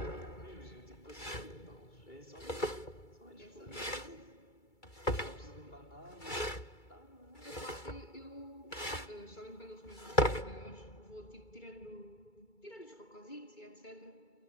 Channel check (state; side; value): late; right; 2.3 ms